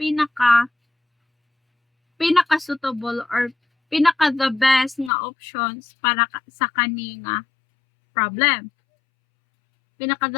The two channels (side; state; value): right; drops out; at 5.1 s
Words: suitable or pinaka the best nga options para sa kani nga problem. Pinaka